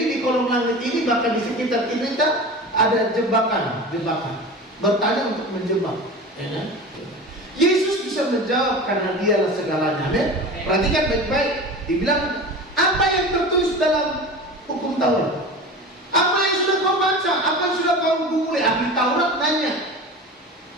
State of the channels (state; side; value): normal; both; correlation 0.32